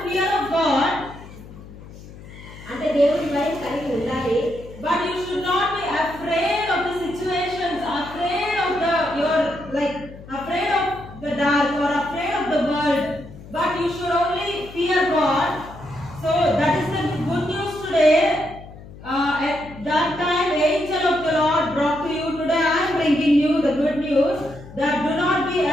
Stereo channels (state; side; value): noise; left; hum, 17 dB below the sound